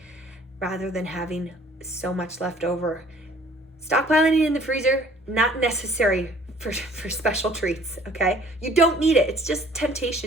rather than having so much left over. Stockpiling it in the freezer, not necessary for special treats, okay? You don't need it. It's just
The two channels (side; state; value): both; normal; correlation 0.55